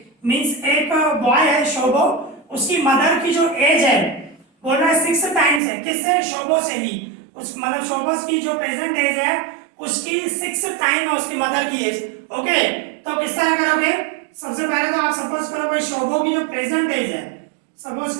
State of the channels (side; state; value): left; drops out; at 5.6 s